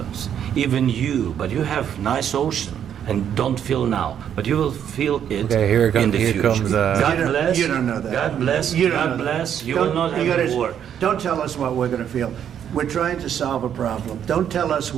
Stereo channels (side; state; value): left; quieter; 9.1 dB